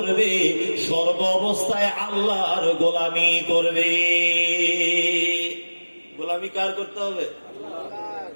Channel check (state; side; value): inverted; both; correlation -1.00